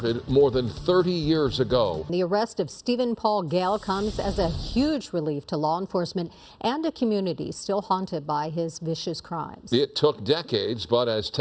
more than 30 years ago. The arrest of Stephen Paul Gale comes as a huge relief to law enforcement and a community still haunted by his vicious crimes. It took decades, but as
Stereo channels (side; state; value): both; identical; correlation 1.00